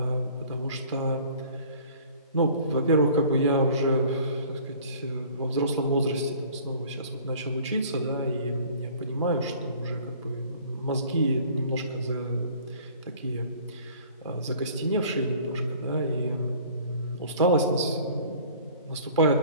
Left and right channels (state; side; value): inverted; both; correlation -0.50